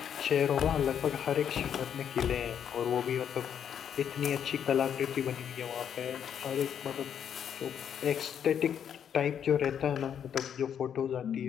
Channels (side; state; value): right; quieter; 8.6 dB